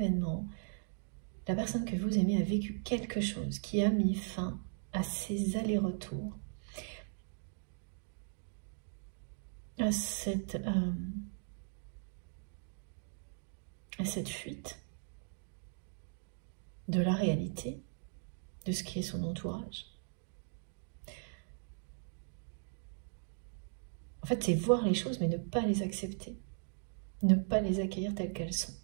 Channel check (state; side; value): silent; left; digital silence